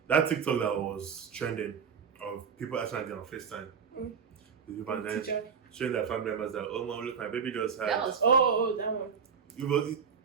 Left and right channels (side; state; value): left; quieter; 6.5 dB